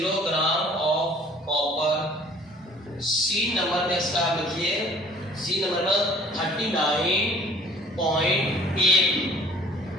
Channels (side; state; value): both; normal; correlation 0.52